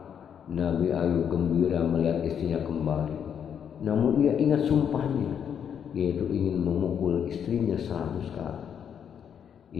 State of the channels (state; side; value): quieter; right; 8.2 dB